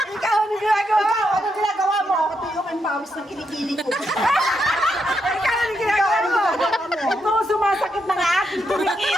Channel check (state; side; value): normal; both; correlation 0.81